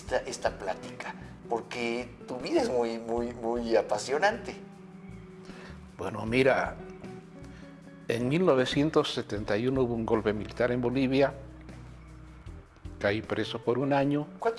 plática, porque tu vida es muy apasionante. Bueno, mira, en 1971 hubo un golpe militar en Bolivia, caí preso por un año.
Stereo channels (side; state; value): both; identical; correlation 1.00